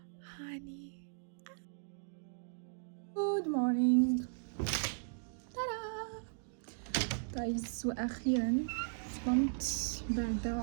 هاني Good morning. ترى جايز، وأخيرا صمت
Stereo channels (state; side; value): silent; left; digital silence